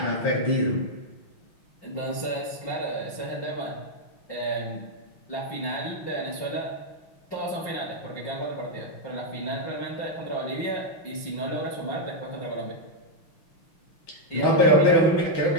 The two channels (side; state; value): right; late; 5.7 ms